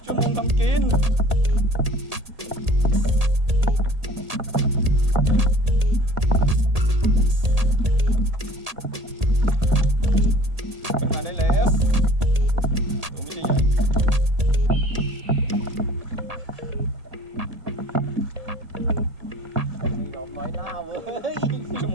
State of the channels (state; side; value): late; left; 1.8 ms